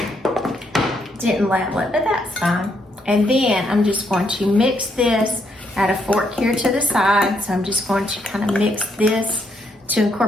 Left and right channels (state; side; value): normal; both; correlation 0.75